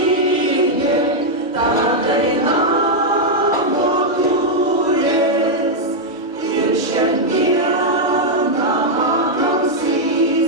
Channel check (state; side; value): normal; both; correlation -0.03